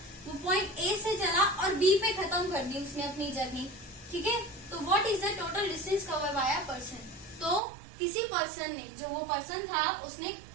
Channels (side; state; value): left; drops out; at 7.6 s